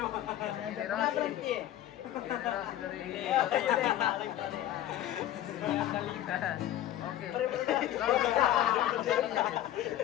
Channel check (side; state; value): right; quieter; 12.8 dB